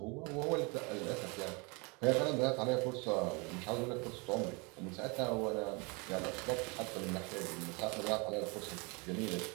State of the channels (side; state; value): left; quieter; 29.6 dB